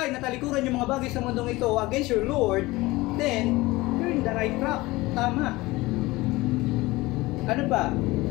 na talikuran yung mga bagay sa mundong ito against your Lord, then you're in the right track. Tama. Ano ba?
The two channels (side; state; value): right; quieter; 20.4 dB